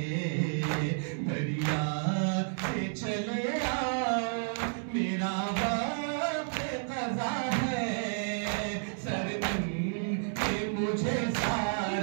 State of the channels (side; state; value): left; silent; 57 dB below the other